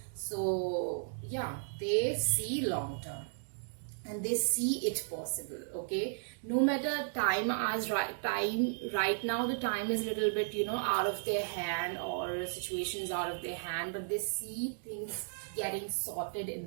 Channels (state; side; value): silent; left; digital silence